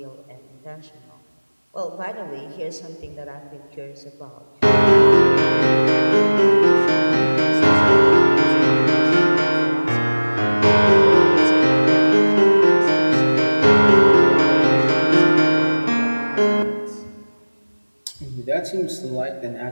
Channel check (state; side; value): inverted; both; correlation -1.00